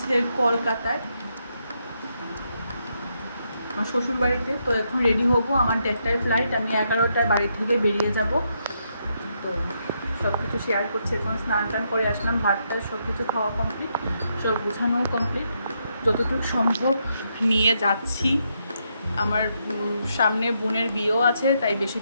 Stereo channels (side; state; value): both; inverted; correlation -0.79